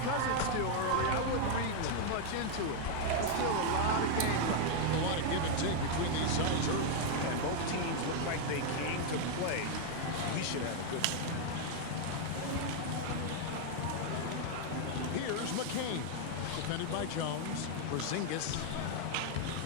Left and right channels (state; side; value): different; both; correlation 0.00